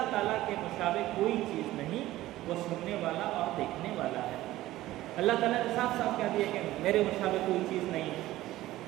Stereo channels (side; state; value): left; quieter; 15.9 dB